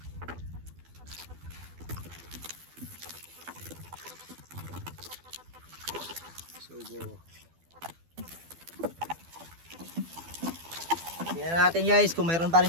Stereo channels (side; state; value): left; late; 12 ms